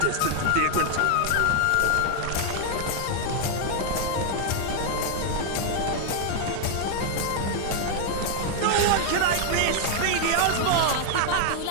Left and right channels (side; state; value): both; different; correlation 0.00